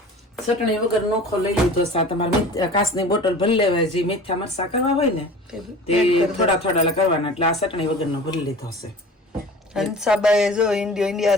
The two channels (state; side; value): normal; both; correlation 0.40